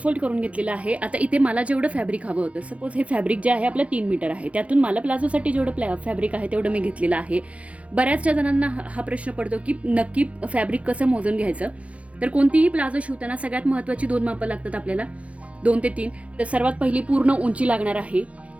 करून घेतलेलं आहे। आता इथे मला जेवढं फॅब्रिक हवं होतं, सपोज हे फॅब्रिक जे आहे आपलं 3 मीटर आहे, त्यातून मला प्लाझोसाठी जेवढं फॅब्रिक आहे तेवढं मी घेतलेलं आहे। बऱ्याचशा जणांना हा प्रश्न पडतो की नक्की फॅब्रिक कसं मोजून घ्यायचं। तर कोणतीही प्लाझो शिवताना सगळ्यात महत्त्वाची 2 मापं लागतात आपल्याला, 2 ते 3। तर सर्वात पहिली पूर्ण उंची लागणार आहे,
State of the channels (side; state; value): left; late; 0.064 ms